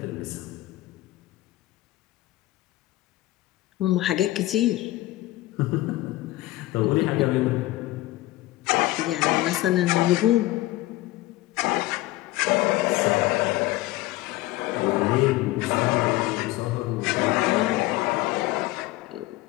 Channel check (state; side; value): quieter; right; 17.4 dB